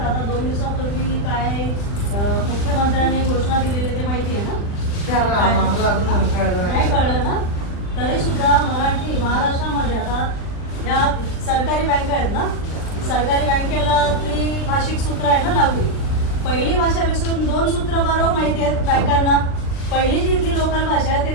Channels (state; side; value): late; right; 39 ms